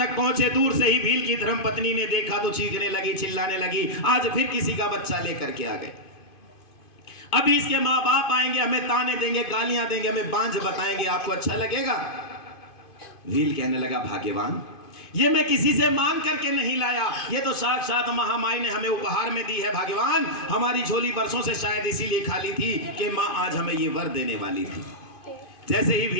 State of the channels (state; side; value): late; right; 2.5 ms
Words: पहुंचे, दूर से ही भील की धर्मपत्नी ने देखा तो चीखने लगी, चिल्लाने लगी, आज फिर किसी का बच्चा लेकर के आ गए। अभी इसके माँ बाप आएंगे, हमें ताने देंगे, गालियां देंगे, हमें बांझ बताएंगे, आपको अच्छा लगेगा? भील कहने लगा, भाग्यवान, ये मैं किसी से मांग करके नहीं लाया, ये तो साक्षात महामाई ने हमें उपहार में दी है। भाग्यवान, हमारी झोली बरसों से शायद इसीलिए खाली थी कि माँ आज हमें ये वर देने वाली थी। जैसे ही